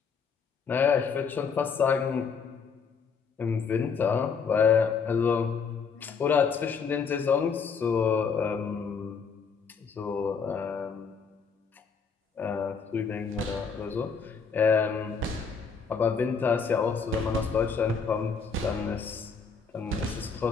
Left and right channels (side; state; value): right; quieter; 5.7 dB